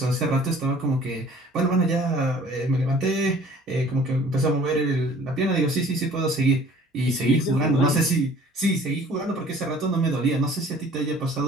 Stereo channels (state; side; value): normal; both; correlation 0.51